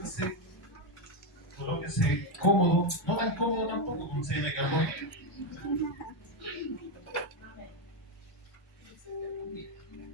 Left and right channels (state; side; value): normal; both; correlation 0.06